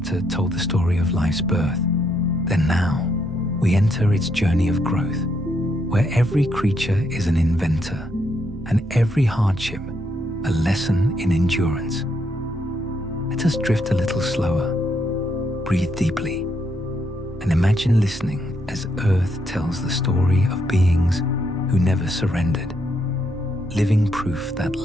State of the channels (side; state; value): both; normal; correlation 0.76